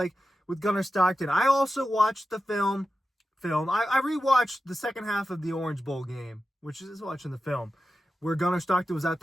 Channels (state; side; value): normal; both; correlation 0.92